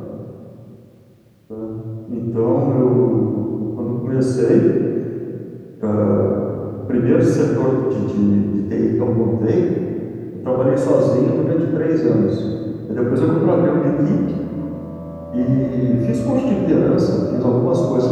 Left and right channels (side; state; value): both; identical; correlation 1.00